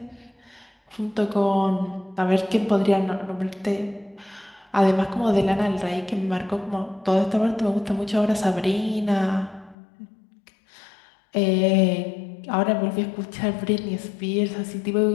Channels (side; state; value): right; drops out; at 9.8 s